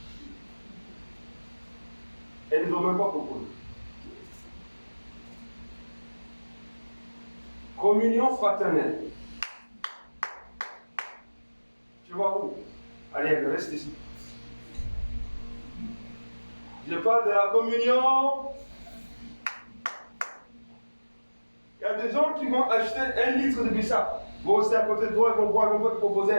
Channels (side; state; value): both; inverted; correlation -1.00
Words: Et ils ne nous ont même pas proposé. Communion fraternelle. Tu vois où? Allez, reste ici. Je parle de la communion. Il y a des gens qui vont acheter 1 litre de bissap. Vont rester à côté de toi, ils vont boire, ils vont te proposer